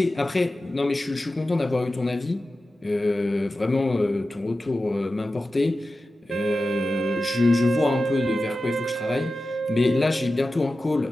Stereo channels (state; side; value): normal; both; correlation 0.94